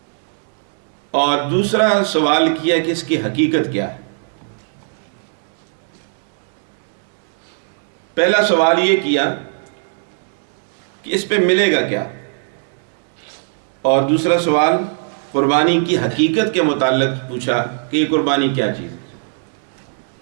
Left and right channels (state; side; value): silent; left; digital silence